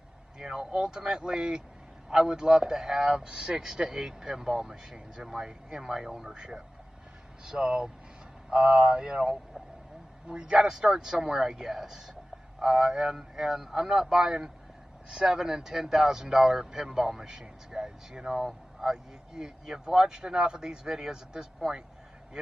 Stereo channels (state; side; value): normal; both; correlation 0.96